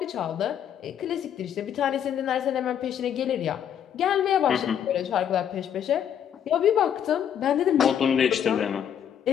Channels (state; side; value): quieter; right; 9.2 dB